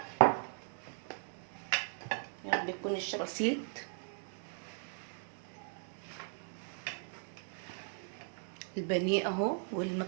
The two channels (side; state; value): left; silent; 52 dB below the other